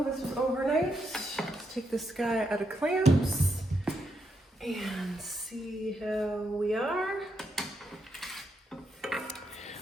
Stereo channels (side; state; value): both; normal; correlation 0.80